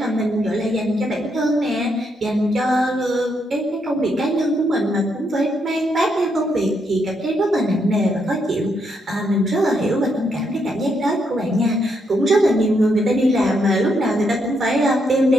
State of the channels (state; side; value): normal; both; correlation 0.77